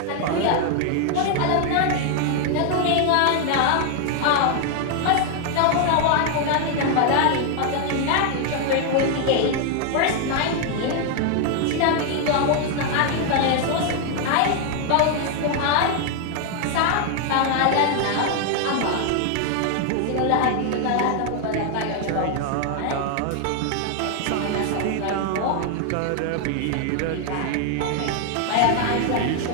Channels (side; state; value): both; different; correlation 0.00